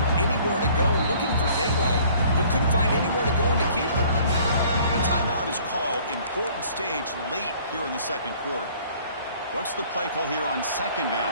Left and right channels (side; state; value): both; inverted; correlation -0.55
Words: for anywhere to go, looking for daylight, but couldn't find anywhere to go and to keep it. A timeout is called. Important stage late here in the second quarter. What's the play call here on second